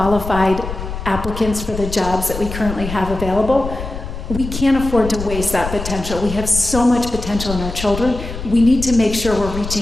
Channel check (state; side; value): noise; left; rumble, 8 dB below the sound